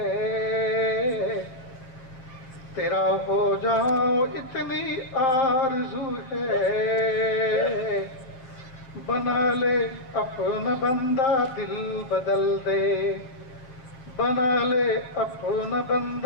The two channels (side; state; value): right; late; 7.6 ms